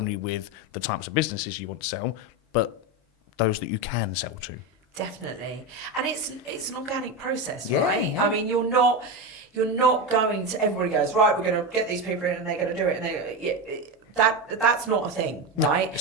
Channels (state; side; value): normal; both; correlation 0.16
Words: with the types of businesses you want to sell, but those that you can sell to. Definitely. And it's an organic process, Yeah, right? yeah. I mean, you're not going to, everybody goes, right, we're going to get these people in and they're going to do it. And that's not a thing, right? No,